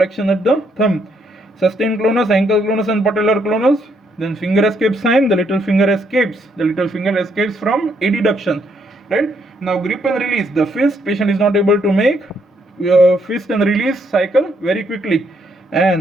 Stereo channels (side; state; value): both; normal; correlation 0.73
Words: at the thumb. Sustained clonus, ankle clonus and patellar clonus. Then finger escape sign, the little finger escapes. From adduction. Right? Now grip and release. The fist, patient is not able to make fist and release cycle very quickly.